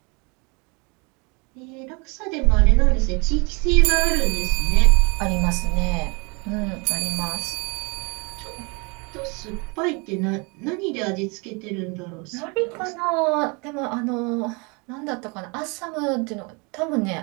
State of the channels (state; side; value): quieter; left; 30.6 dB